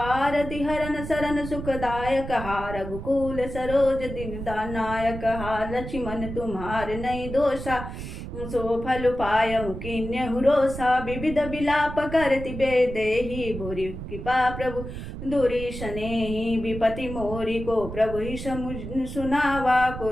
हरन सरन सुखदायक हा रघुकुल सरोज दीनदानायक। हा लक्ष्मण तुम्हार नहीं दोषा सो फल पायहु किन्यहु रोषा। विविध विलाप करति बेदेहि भूरि कृपा प्रभु दूरी सनेहि। विपति मोरी को प्रभु ही सुनावा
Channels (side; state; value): right; noise; rumble, 8 dB below the sound